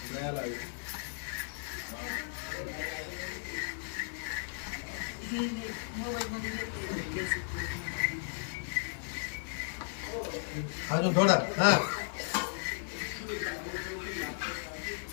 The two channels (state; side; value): silent; right; digital silence